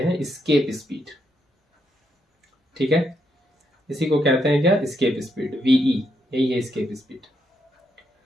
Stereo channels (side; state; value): both; normal; correlation 0.79